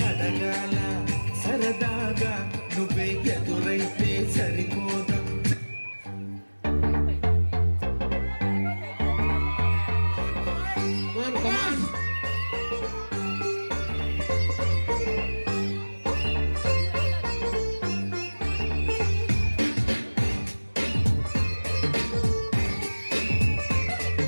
అడగాల సరదాగా నువ్వే ఎదురైతే సరిపోదా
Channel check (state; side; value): inverted; both; correlation -1.00